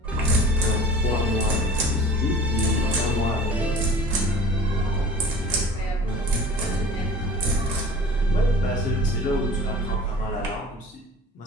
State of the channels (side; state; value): both; normal; correlation 0.43